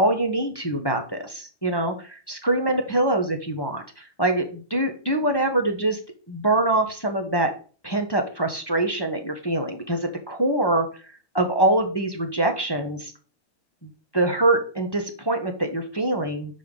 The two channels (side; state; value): right; late; 1.1 ms